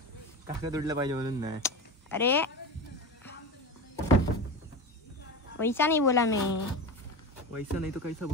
कागद उडलं पाहिजे म्हणून नाही. अरे वैसा नहीं बोला मैं. वैसा नहीं तो कैसा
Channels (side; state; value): both; normal; correlation 0.23